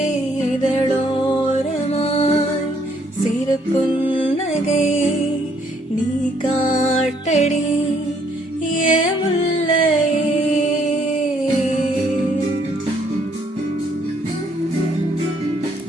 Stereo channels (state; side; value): normal; both; correlation 0.68